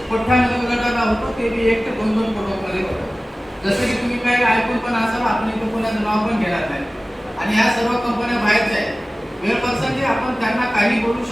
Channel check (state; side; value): normal; both; correlation 0.97